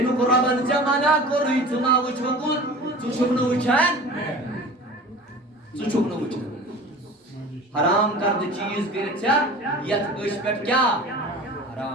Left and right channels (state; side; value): normal; both; correlation 0.39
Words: رۄبن ژےٚ منع کوٚرُے ژٕ ما وٕچھوکُن ژٕ چھُکھ نہٕ وٕچھان حرام کردٕ چیٖز کٔرِتھ ژےٚ یتھ أچھ پٮ۪ٹھ کیٛاہ